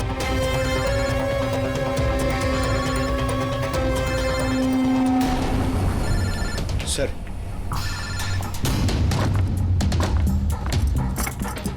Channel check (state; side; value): identical; both; correlation 1.00